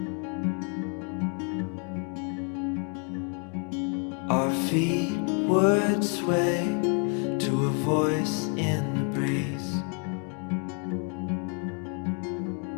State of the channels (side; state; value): right; quieter; 40.0 dB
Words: Our feet would sway to a voice in the breeze.